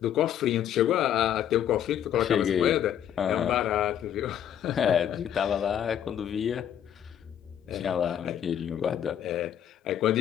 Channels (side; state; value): right; quieter; 10.1 dB